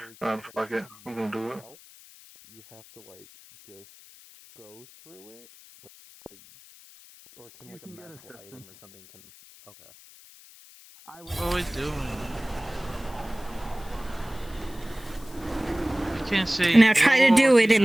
where Fuck it, I'm gonna do it. you have to like just go through it, like, or can like a medical item or something can? Okay. What are we doing? I can't see. Now try to do it in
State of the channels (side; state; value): left; noise; hiss, 22 dB below the sound